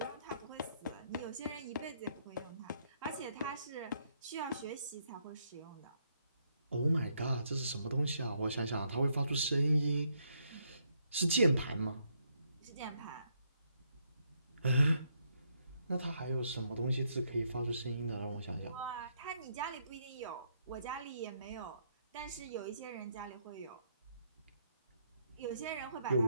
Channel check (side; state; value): both; inverted; correlation -0.74